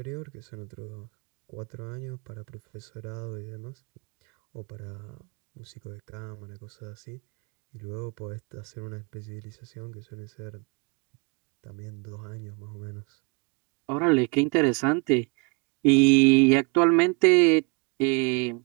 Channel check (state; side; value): quieter; left; 32.3 dB